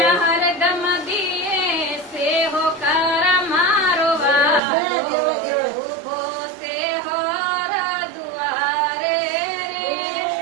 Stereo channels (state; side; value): drops out; left; at 4.6 s